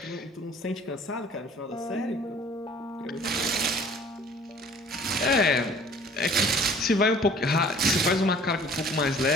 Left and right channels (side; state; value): both; normal; correlation 0.51